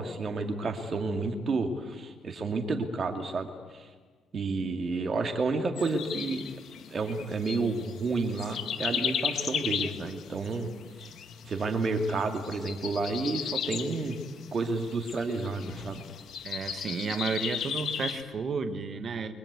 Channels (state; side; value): normal; both; correlation 0.74